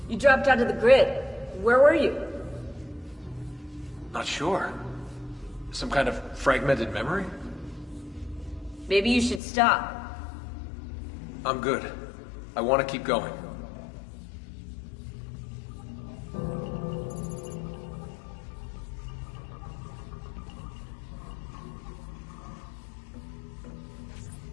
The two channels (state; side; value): drops out; right; at 9.4 s